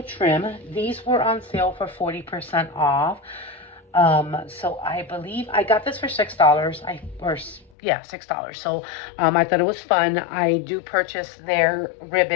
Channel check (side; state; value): right; drops out; at 7.7 s